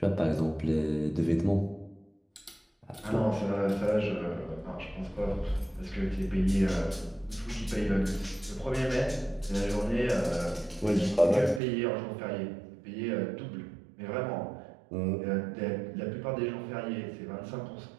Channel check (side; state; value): left; drops out; at 11.6 s